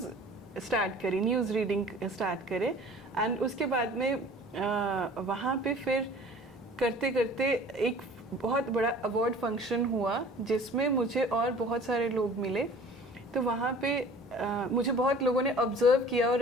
स्टार्ट करी, न्यूज़ रीडिंग स्टार्ट करे एंड उसके बाद में वहाँ पे फिर करते करते एक बहुत बड़ा अवार्ड फंक्शन हुआ जिसमें मुझे और बहुत सारे लोग मिले। तो वहाँ पे मुझे बहुत लोगों ने ऑब्जर्व किया और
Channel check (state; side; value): normal; both; correlation 0.47